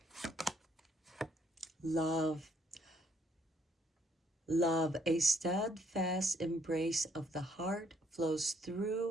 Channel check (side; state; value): both; normal; correlation 0.68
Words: Love. Love, a steadfast embrace of the heart flows